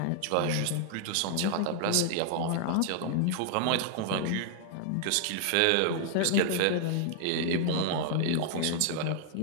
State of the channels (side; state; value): both; different; correlation 0.00